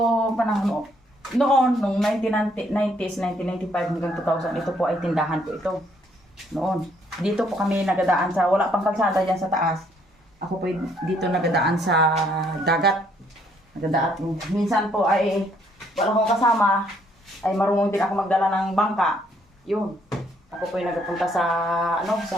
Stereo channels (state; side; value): normal; both; correlation 0.68